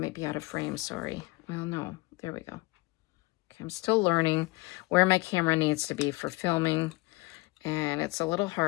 be out of frame, sorry. Well, no. There we go. Okay, I'm still learning where my camera needs to be for filming. And it's a little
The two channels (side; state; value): right; quieter; 23.1 dB